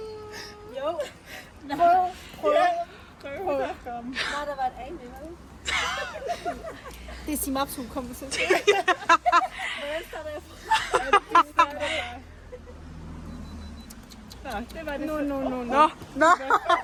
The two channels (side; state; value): both; identical; correlation 1.00